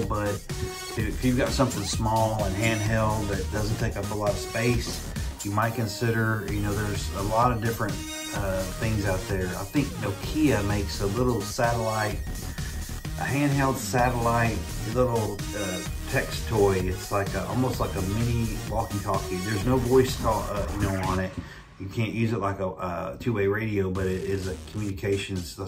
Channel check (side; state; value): both; identical; correlation 1.00